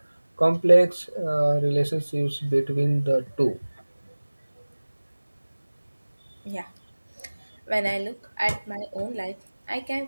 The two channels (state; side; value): inverted; both; correlation -1.00